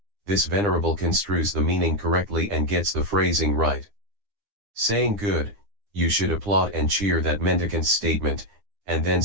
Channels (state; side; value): late; left; 9.8 ms